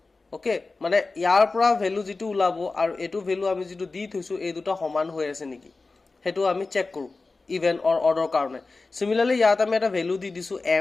ওকে মানে ইয়াৰ পৰা ভ্যালু যেটো ওলাব আৰু এটো ভ্যালু আমি যেটো দি থৈছো এই দুটো সমান হৈ আছে নেকি হেতু আমি চেক কৰো ইভেন অৰ অৰ্ডাৰ কাৰণে সিমিলাৰলি ইয়াত আমি এটা ভ্যালু দি দিছো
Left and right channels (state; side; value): quieter; right; 3.7 dB